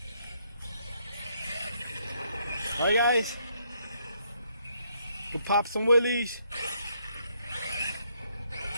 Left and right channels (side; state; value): both; inverted; correlation -0.72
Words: Alright guys, to pop some wheelies.